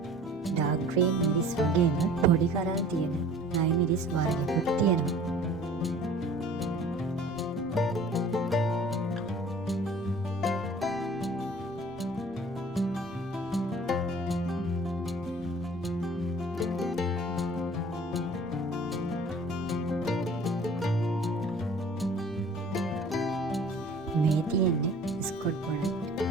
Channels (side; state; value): both; normal; correlation 0.48